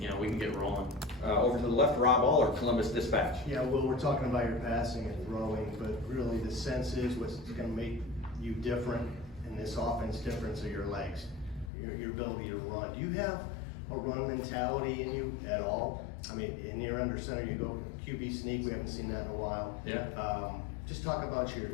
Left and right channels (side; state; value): right; drops out; at 11.7 s